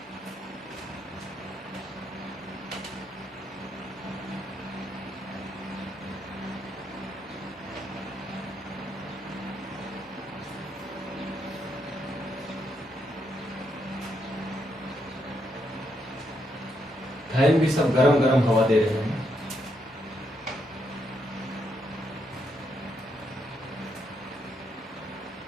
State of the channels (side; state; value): both; normal; correlation 0.78